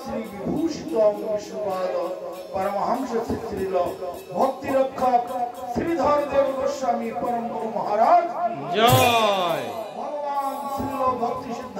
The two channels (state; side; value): identical; both; correlation 1.00